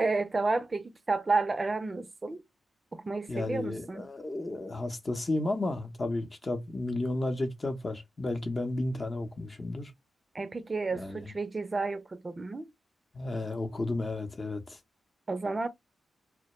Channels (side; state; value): both; normal; correlation 0.92